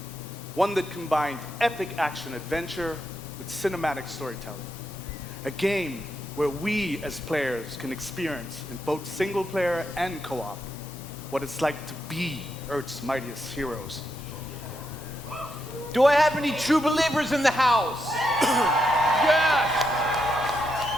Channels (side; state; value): both; normal; correlation 0.82